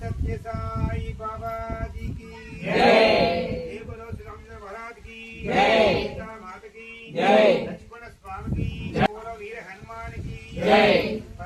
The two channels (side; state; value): both; identical; correlation 1.00